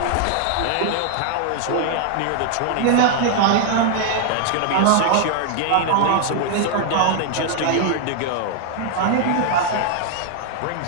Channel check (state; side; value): different; both; correlation 0.00